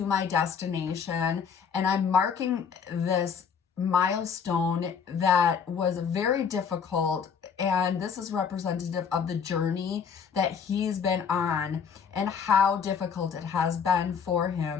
my destination, and I'm marking this milestone that was very difficult. And this is representative of the journey that he's been on and how difficult it has been for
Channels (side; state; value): right; quieter; 6.7 dB